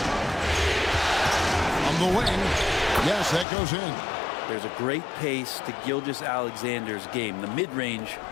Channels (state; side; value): drops out; right; at 3.5 s